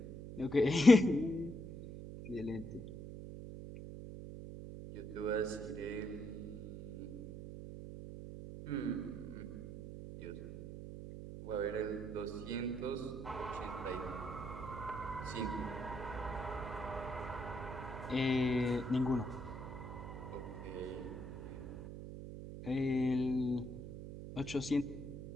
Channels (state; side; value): noise; right; hum, 9 dB below the sound